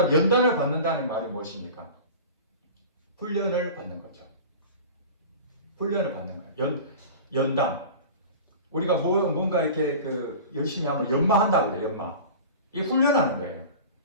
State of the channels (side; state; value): both; inverted; correlation -0.36